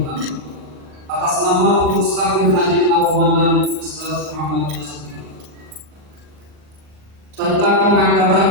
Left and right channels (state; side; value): late; left; 39 ms